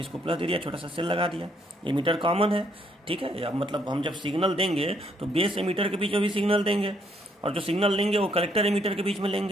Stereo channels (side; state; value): both; normal; correlation 0.70